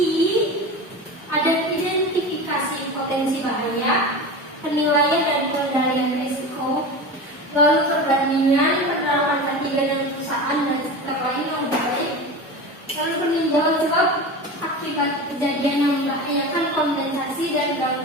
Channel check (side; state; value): both; normal; correlation 0.28